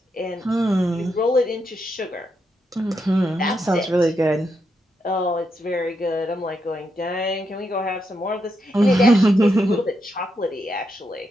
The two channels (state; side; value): normal; both; correlation 0.82